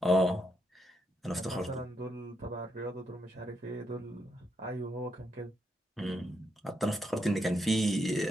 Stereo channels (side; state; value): both; normal; correlation 0.80